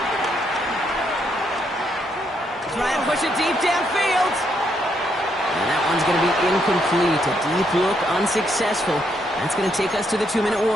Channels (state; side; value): normal; both; correlation 0.75